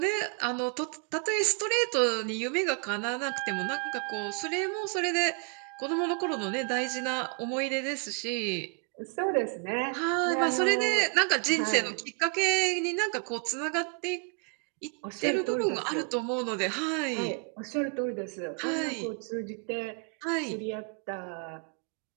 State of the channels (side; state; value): left; quieter; 37.8 dB